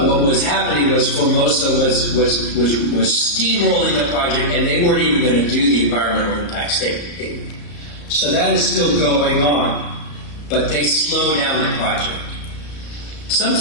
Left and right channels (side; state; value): right; late; 34 ms